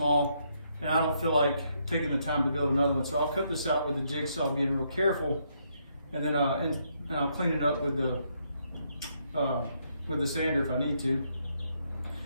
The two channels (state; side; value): inverted; both; correlation -0.75